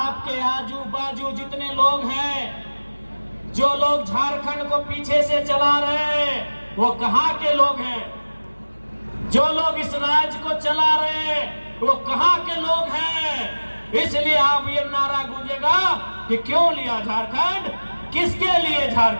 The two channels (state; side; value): inverted; both; correlation -1.00